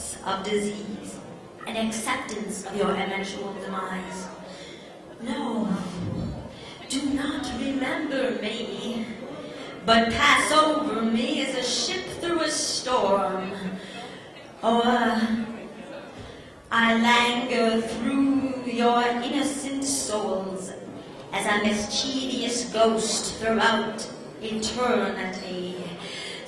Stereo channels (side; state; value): both; identical; correlation 1.00